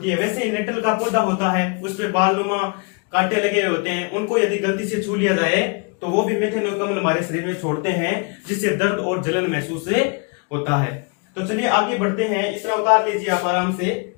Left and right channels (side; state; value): right; quieter; 33.3 dB